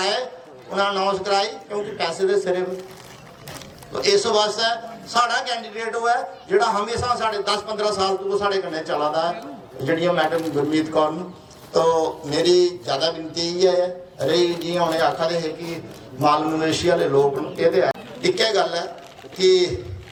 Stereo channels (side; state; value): both; identical; correlation 1.00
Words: उन्हें अनाउंस कराई क्योंकि पैसे के सिरे तो इस वास्ते साड़ा कैंडीडेट हुआ है जोड़ा हमेशा साढ़े 10-15 साल तो साढ़े कन्ने चला है जड़ियां मैडम गुरमीत कौर। तो मेरी ज़्यादा विनती ये है रही जी उन्हें आखा दे है कि माल मवेशी वाले लोग ये एक गल है कि